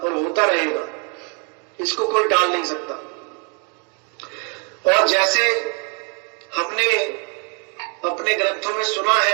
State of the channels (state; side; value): quieter; left; 37.8 dB